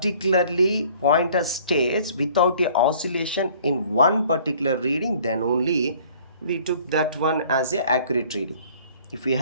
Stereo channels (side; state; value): both; inverted; correlation -0.54